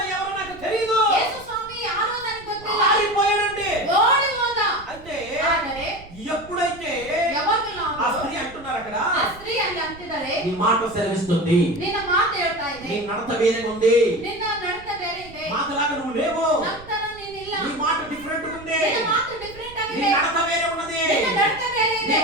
ఎవరో నాకు తెలియదు, యేసు స్వామి యారో ನನಗೆ ಗೊತ್ತಿಲ್ಲ, పారిపోయాడండి. ఓడి ಹೋದ. అంటే ಆದರೆ ఎప్పుడైతే ఆ స్త్రీ అంటున్నారు అక్కడ, ఆ స్త్రీ ಅಲ್ಲಿ ಅಂತಿದ್ದಾರೆ, నీ మాట సెలవిస్తుంది, నిన్న ಮಾತು ಹೇಳ್ತಾ ಇದೆ, నీ నడత వేరే ఉంది, నిన్న నడత ಬೇರೆ ಇದೆ, మాటలాగా నువ్వు లేవు, ನಂತರ ನೀನಿಲ್ಲ, నీ మాట డిఫరెంట్ ఉంది, నిన్న ಮಾತು ಡಿಫರೆಂಟ್ ಆಗಿದೆ, నీ నడత వేరే ఉన్నది, నిన్న నడత ಬೇರೆ ಇದೆ, నీ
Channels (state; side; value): noise; right; rumble, 20 dB below the sound